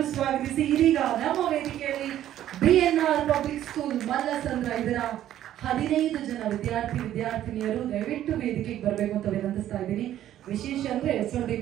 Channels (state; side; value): quieter; left; 12.1 dB